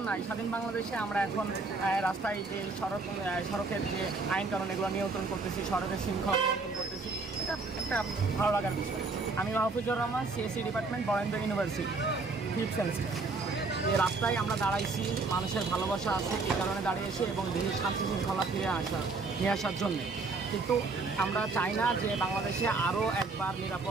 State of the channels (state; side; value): quieter; left; 3.9 dB